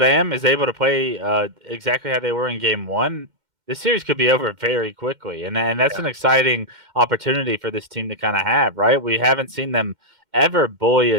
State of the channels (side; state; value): left; late; 2.1 ms